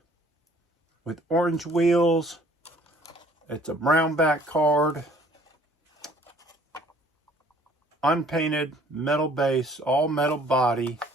with orange wheels. It's a brown back card. Unpainted metal base, all metal body.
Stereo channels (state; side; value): normal; both; correlation 0.56